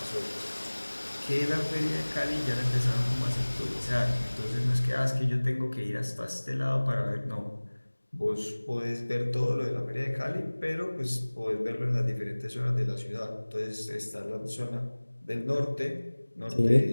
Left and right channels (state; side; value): inverted; both; correlation -1.00